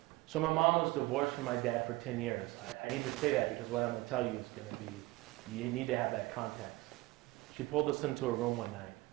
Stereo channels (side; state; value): left; quieter; 20.7 dB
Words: So my mom was divorced from my dad for 10 years. I need to say that because what I'm going to tell you is going to be, you need to have that context. She pulled us into a room one night.